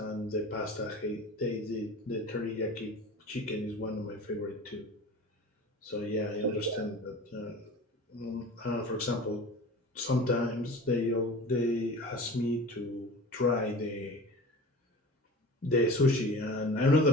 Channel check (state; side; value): normal; both; correlation 0.36